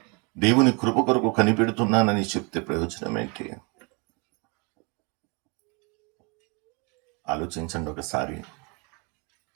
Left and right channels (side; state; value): left; quieter; 31.5 dB